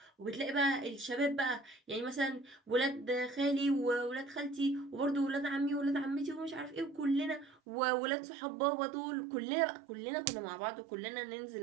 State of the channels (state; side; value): drops out; left; at 7.6 s